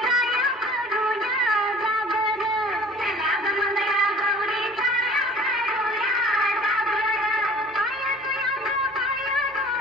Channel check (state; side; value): normal; both; correlation 0.47